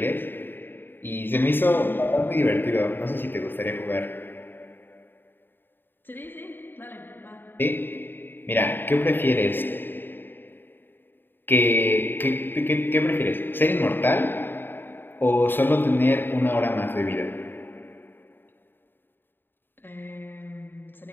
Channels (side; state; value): right; late; 0.096 ms